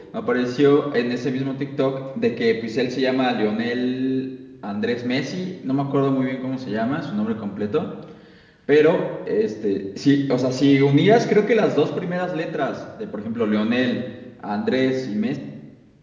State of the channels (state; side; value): identical; both; correlation 1.00